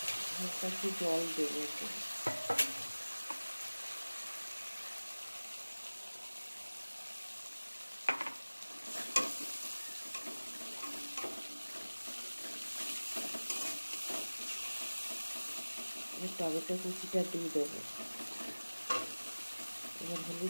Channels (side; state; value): both; inverted; correlation -1.00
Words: হালকা একটু জল দেবো। এবার টমেটো কুচিটা দিয়ে দেবো, এবার